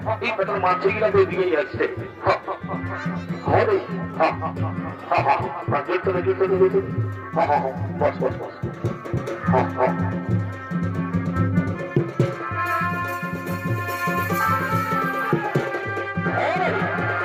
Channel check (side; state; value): both; identical; correlation 1.00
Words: এই পেটার মাছগুলা তো এদিকেই আসছে হ্যাঁ রে জুড়তে না জুড়তে জুড়তে বস বস বস